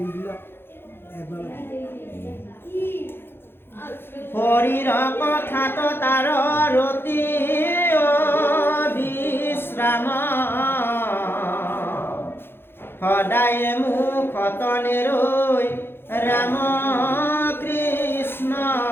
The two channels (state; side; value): late; right; 0.11 ms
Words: এবাৰ হৰিৰ কথাত তাৰ ৰতি বিশ্ৰাম সদায় মুখত নেৰৈ ৰাম কৃষ্ণ